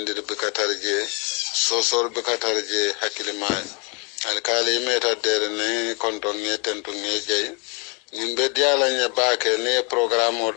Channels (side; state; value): right; quieter; 33.0 dB